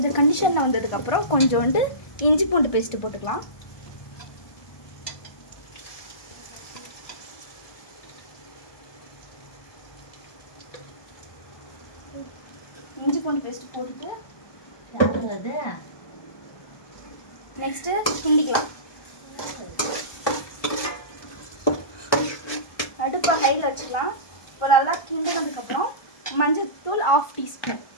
கண்டிஷனில் வந்ததுக்கப்புறம் கொஞ்சோண்டு இஞ்சி பூண்டு பேஸ்ட்டு போட்டுக்கலாம். இஞ்சி பூண்டு பேஸ்ட்டு போட்டுட்டு நெக்ஸ்ட்டு கிண்டிக்கலாம். அடுப்பை ஹையில் வச்சுக்கலாம். இப்போ நல்லா கிண்டினதுக்கப்புறம் மஞ்சள்தூள் 1/2 டீஸ்பூன்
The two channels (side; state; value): right; late; 1.2 ms